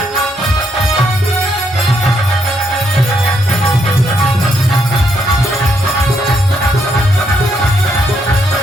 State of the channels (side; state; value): both; normal; correlation 0.75